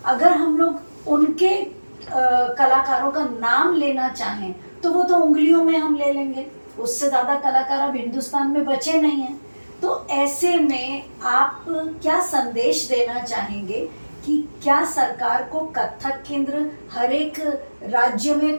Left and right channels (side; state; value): both; inverted; correlation -1.00